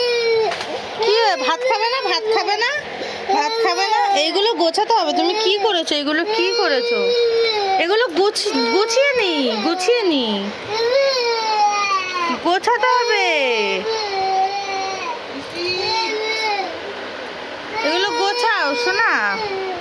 কি ভাত খাবে না? ভাত খাবে না? ভাত খাবে না? এইগুলো গোছাতে হবে। তুমি কি করেছো? এগুলো কি করেছো? এগুলো গুছিয়ে নি, গুছিয়ে নি, গোছাতে হবে। এগুলো গোছাও শোনা।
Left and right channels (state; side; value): identical; both; correlation 1.00